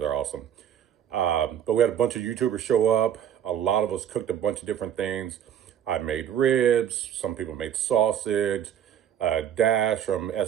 awesome. But we had a bunch of YouTubers show up. A lot of us cooked a bunch of different things. I made ribs. Some people made sausage. Dash from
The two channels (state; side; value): quieter; left; 9.7 dB